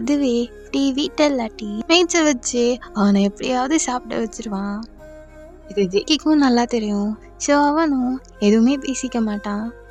டீ வீட்டில் இல்லாட்டி மேய்ச்ச வச்சு அவனை எப்படியாவது சாப்பிட வச்சிருவான். இது ஜேகேக்கும் நல்லா தெரியும். ஸோ அவனும் எதுவுமே பேசிக்க மாட்டான்.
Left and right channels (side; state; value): both; identical; correlation 1.00